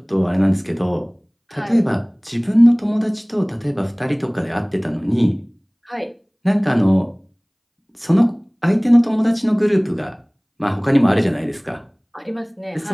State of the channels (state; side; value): identical; both; correlation 1.00